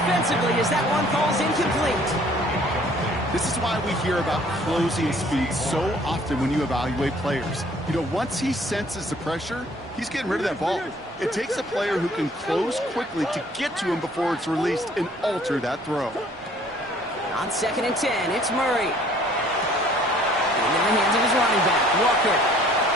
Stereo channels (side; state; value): both; normal; correlation 0.57